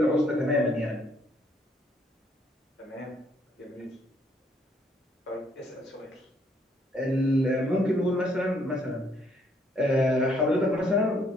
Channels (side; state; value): both; normal; correlation 0.68